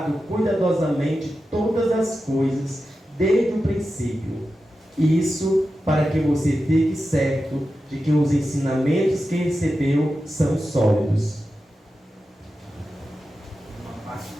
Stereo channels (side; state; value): both; normal; correlation 0.92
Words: cuidadosamente todas as coisas desde o princípio. Isso para que você fique certo de que os ensinamentos que recebeu são sólidos.